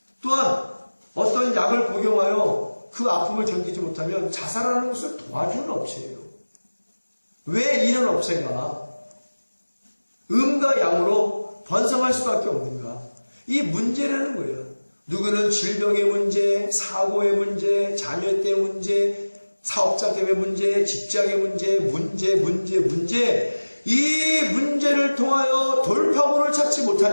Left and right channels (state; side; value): inverted; both; correlation -1.00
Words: 또한 어떤 약을 복용하여 그 아픔을 견디지 못하면 자살하는 것을 도와주는 업체예요. 왜 이런 업체가 음과 양으로 번성할 수밖에 없는가? 이 문제라는 거예요. 누구는 질병의 문제, 사고의 문제, 자녀 때문에 문제, 사업자 때문에 문제, 직장의 문제. 이 문제를 통하여 돌파구를 찾지